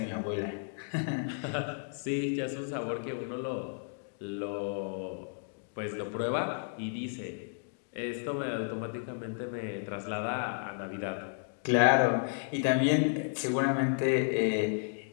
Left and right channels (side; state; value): right; silent; digital silence